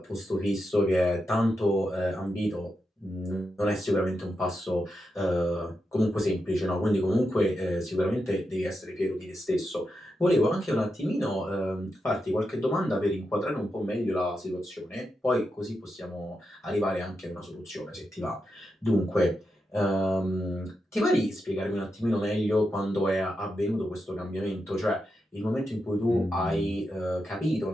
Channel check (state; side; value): normal; both; correlation 0.87